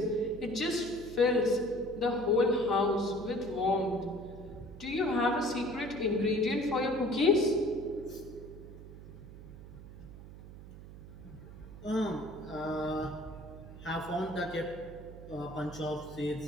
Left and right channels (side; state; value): right; noise; hum, 15 dB below the sound